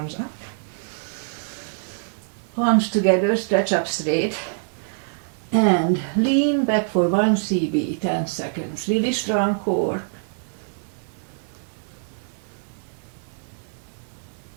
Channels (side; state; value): left; silent; digital silence